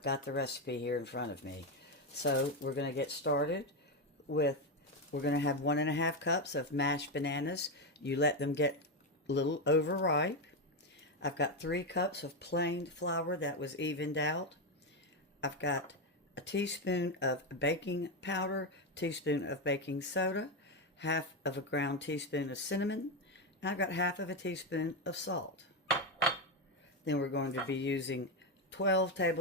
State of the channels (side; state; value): both; normal; correlation 0.09